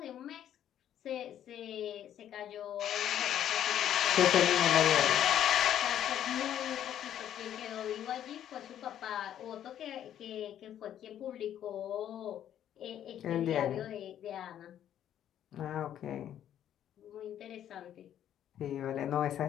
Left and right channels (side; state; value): right; quieter; 10.7 dB